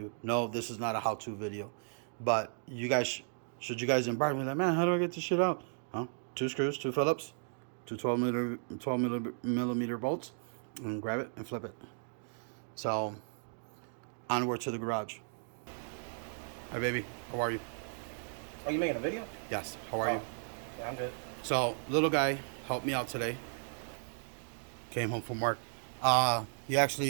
No, this is not a how-to video. But you guys, should you guys embark with that, man, how do I get this shit out? Huh? 2 screws, 2 Phillips, 2 12 millimeter bolts, and grab it and flip it. So onward to the garage. Hi, baby. How are you? Oh, you making a video? Yes. How are you? Yeah, I'm good. So little guy helped me out today. Came home from work. He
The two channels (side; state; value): left; silent; digital silence